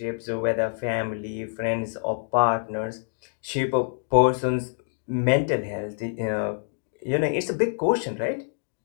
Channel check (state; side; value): silent; right; digital silence